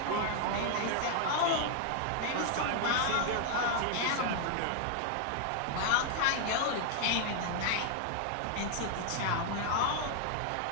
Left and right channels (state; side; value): different; both; correlation 0.00